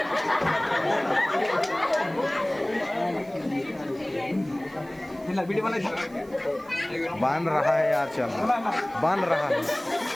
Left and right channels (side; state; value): right; noise; hiss, 27 dB below the sound